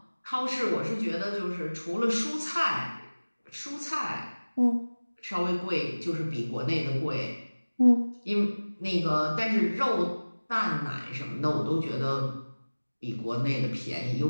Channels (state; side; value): inverted; both; correlation -1.00